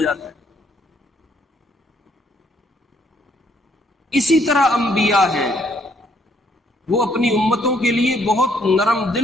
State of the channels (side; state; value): both; normal; correlation 0.68